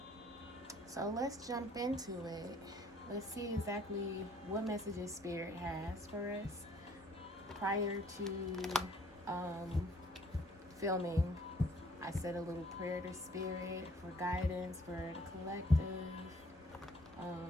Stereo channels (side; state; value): both; normal; correlation 0.60